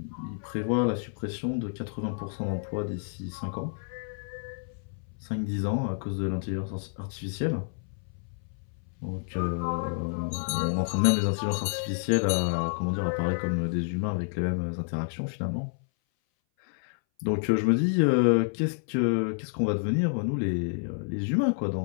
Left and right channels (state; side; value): silent; right; 58 dB below the other